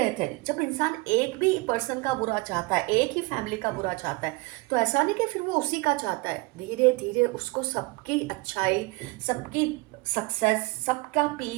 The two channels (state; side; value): quieter; left; 24.0 dB